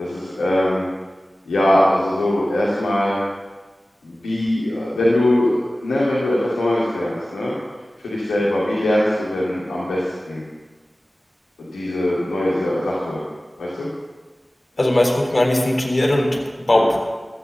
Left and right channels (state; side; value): normal; both; correlation 0.96